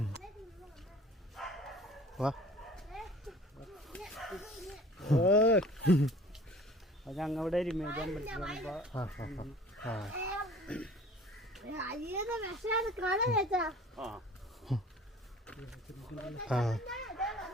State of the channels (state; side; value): normal; both; correlation 0.48